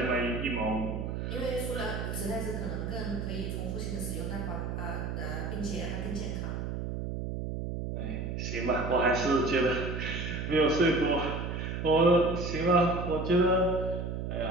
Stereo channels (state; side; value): noise; right; hum, 4 dB below the sound